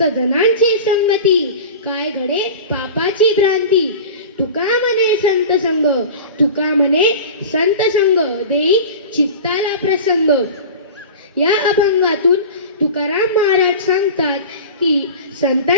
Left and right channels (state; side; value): inverted; both; correlation -0.34